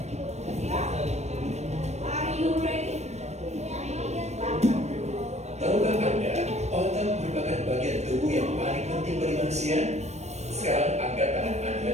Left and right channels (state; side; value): late; left; 0.32 ms